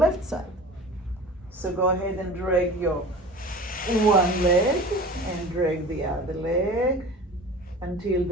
side. So go ahead and drag your one leg and drag the other leg until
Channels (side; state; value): both; normal; correlation 0.38